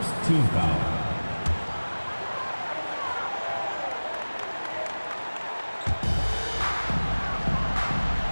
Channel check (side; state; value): both; inverted; correlation -1.00